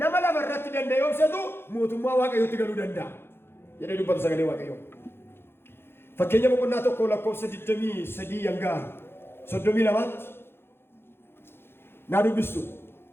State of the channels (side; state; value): right; late; 0.11 ms